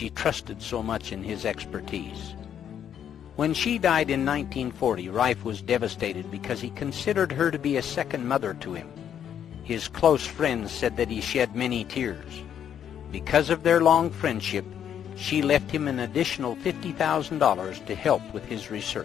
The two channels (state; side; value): quieter; right; 9.2 dB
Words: trusted so much in his expertise. When she died in 1940, Rife was devastated because he considered her to be a second mother to him. His close friends said that he shed many tears. Because of their long friendship, she left him an additional $50,000 to help with his